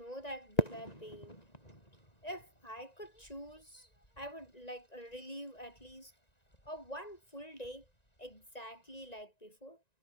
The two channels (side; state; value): right; late; 1.9 ms